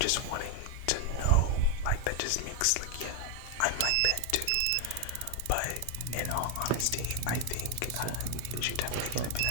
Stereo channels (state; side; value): different; both; correlation 0.01